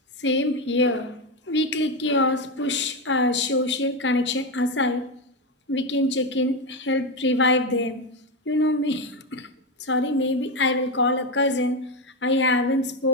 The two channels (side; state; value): both; normal; correlation 0.12